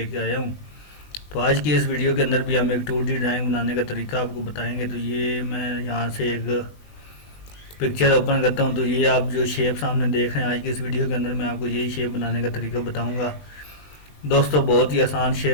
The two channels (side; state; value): right; late; 20 ms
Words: आया हूँ। तो आज की इस वीडियो के अंदर भी हम एक 2D ड्राइंग बनाने का तरीका आपको बताएंगे। तो ये मैं यहाँ से एक पिक्चर ओपन करता हूँ। तो ये आप जो शेप सामने देख रहे हैं, आज की इस वीडियो के अंदर मैं आपको यही शेप बनाने का तरीका बताऊँगा। दोस्तों बहुत ही आसान